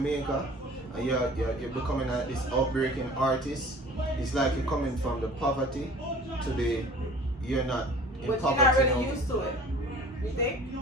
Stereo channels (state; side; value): normal; both; correlation 0.45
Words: You're becoming this outbreaking artist. It's like you're coming from the poverty to the you're not in but poverty. But you're not really used to it. You think?